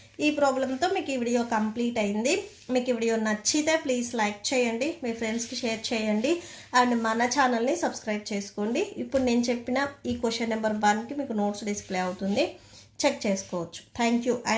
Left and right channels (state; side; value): identical; both; correlation 1.00